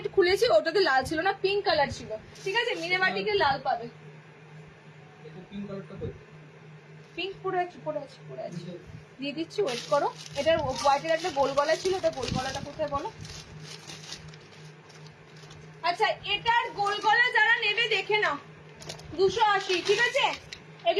খুলেছি, ওটাতে লাল ছিল না, পিঙ্ক কালার ছিল, ঠিক আছে? মিনেবাটিকে লাল পাবে। পিঙ্ক পরে আছে দিয়ে দিচ্ছি, ওয়েট করো। এটার হোয়াইটের একটা গোল গলা ছিল, ওটা গোল গলাটা কোথায় বলো? আচ্ছা, এটার গোল গলা যারা নেবে দেখে নাও, 280, ঠিক আছে?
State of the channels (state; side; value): identical; both; correlation 1.00